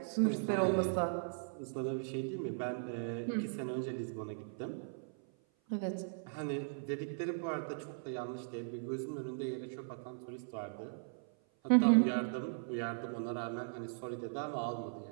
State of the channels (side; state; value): left; silent; 52 dB below the other